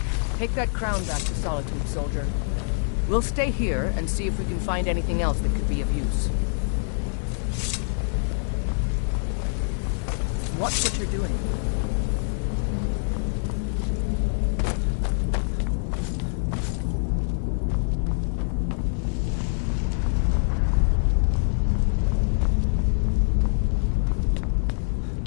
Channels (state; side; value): silent; right; 62 dB below the other